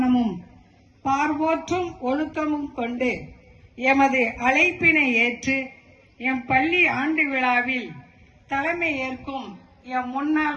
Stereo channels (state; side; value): identical; both; correlation 1.00